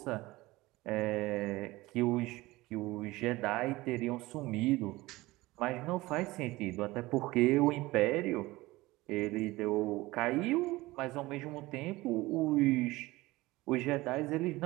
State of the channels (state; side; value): quieter; left; 19.7 dB